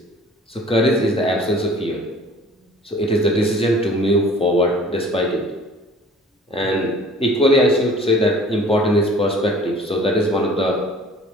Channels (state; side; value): normal; both; correlation 0.49